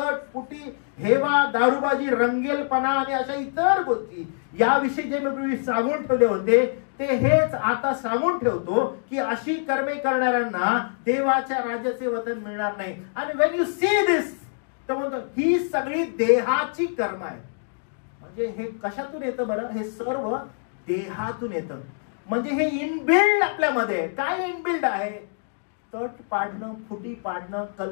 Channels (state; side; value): silent; right; digital silence